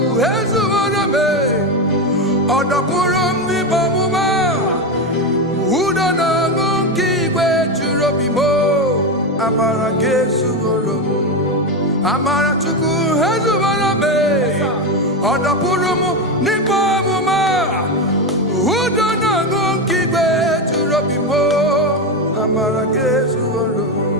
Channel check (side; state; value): both; normal; correlation 0.13